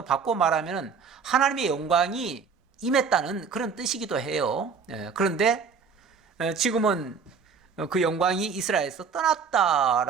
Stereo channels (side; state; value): left; quieter; 5.7 dB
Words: 바꿔 말하면은 하나님의 영광이 임했다는 그런 뜻이기도 해요. 그런데 지금은 그 영광이 이스라엘에서